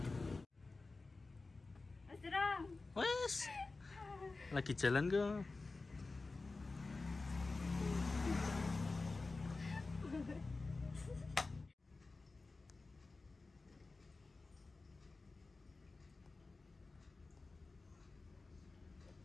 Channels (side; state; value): right; quieter; 3.6 dB